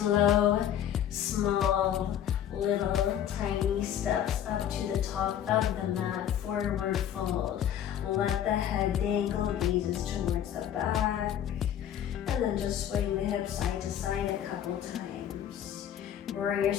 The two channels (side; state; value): right; quieter; 10.2 dB